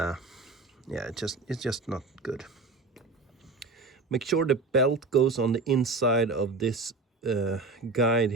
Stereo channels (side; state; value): left; quieter; 3.8 dB